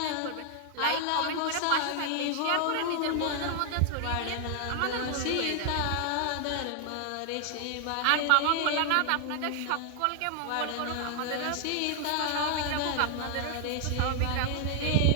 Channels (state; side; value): different; both; correlation 0.00